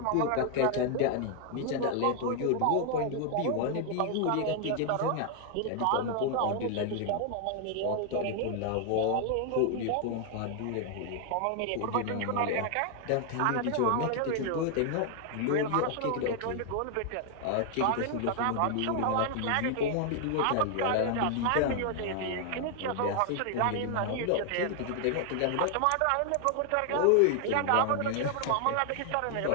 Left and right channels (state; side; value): different; both; correlation 0.00